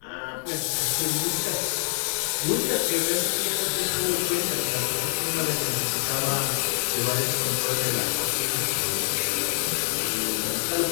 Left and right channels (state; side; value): silent; right; digital silence